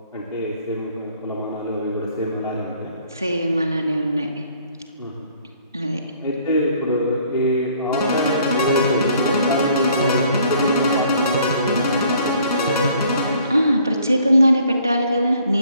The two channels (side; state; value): both; inverted; correlation -0.61